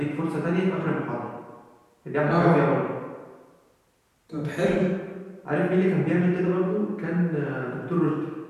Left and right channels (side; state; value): both; identical; correlation 1.00